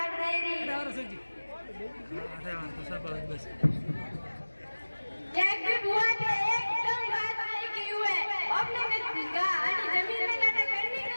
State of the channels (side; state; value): both; inverted; correlation -1.00